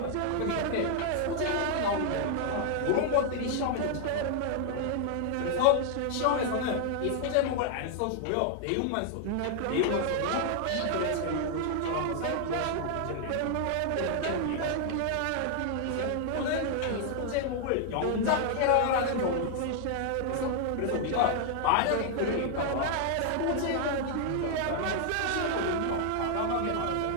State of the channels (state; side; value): different; both; correlation 0.00